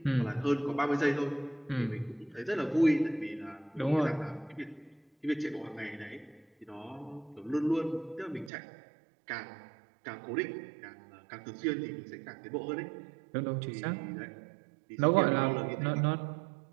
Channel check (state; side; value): drops out; left; at 8.5 s